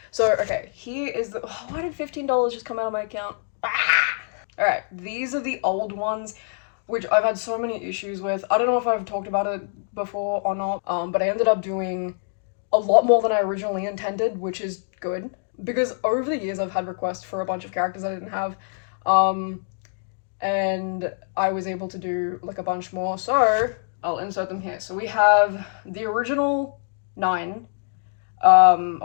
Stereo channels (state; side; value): silent; right; digital silence